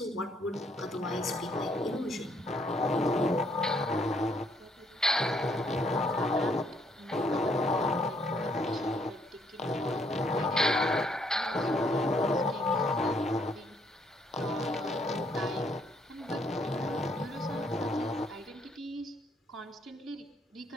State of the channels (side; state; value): both; normal; correlation 0.69